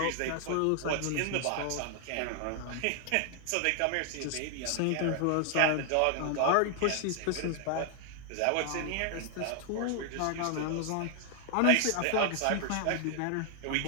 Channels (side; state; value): both; different; correlation 0.00